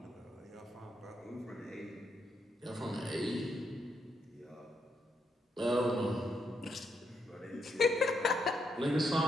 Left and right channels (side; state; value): both; normal; correlation 0.78